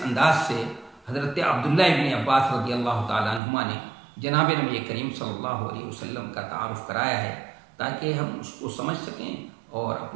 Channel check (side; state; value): left; drops out; at 3.4 s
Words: انداز سے حضرت عبداللہ ابن عباس رضی اللہ تعالیٰ عنہما نے جناب نبی کریم صلی اللہ علیہ وسلم کا تعارف کرایا ہے، تاکہ ہم اس کو سمجھ سکیں اور